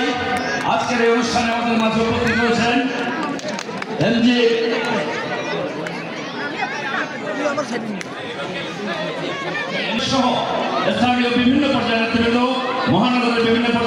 আজকের এই অনুষ্ঠানে আমাদের মাঝে উপস্থিত হয়েছেন এমজি সহ স্থানীয় বিভিন্ন পর্যায়ের নেতৃবৃন্দ মহানগরের বিভিন্ন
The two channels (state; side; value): identical; both; correlation 1.00